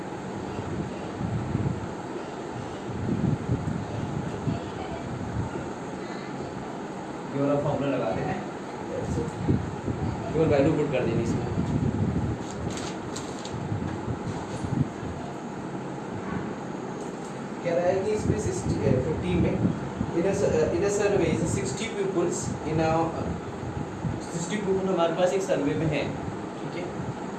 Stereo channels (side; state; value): right; noise; hum, 25 dB below the sound